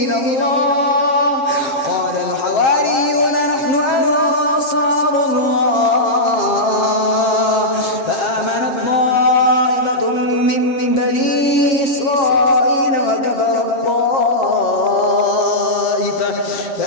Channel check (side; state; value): right; late; 7.5 ms